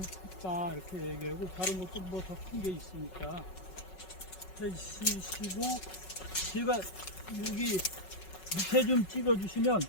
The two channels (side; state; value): right; late; 5.4 ms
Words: 컸다, 이렇게 얘기하고, 다른 것도 뭐 더 큰 게 있으니까. 해주시고, 제가 여기 밑에 좀 찍어주시면,